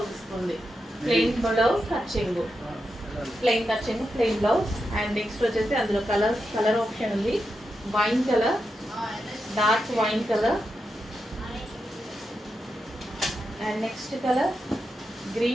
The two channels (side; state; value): both; normal; correlation 0.87